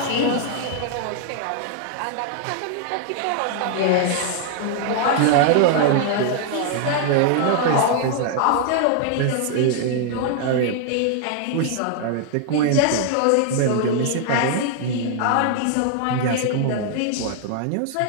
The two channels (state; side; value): different; both; correlation 0.00